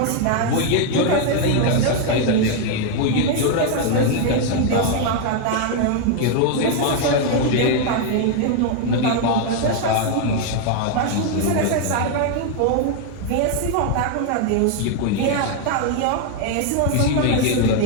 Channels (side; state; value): both; different; correlation 0.01